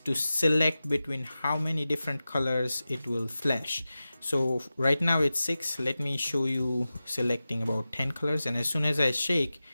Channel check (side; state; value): both; inverted; correlation -0.94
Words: select between how many different colors it will flash. So right now it's 6. Let me show you selecting about 10 colors, and as soon as I shake,